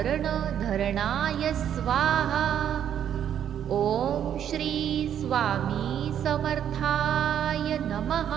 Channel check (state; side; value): quieter; left; 9.6 dB